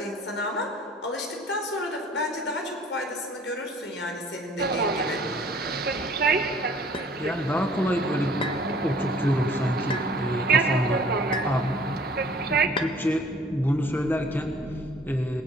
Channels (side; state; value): both; normal; correlation 0.53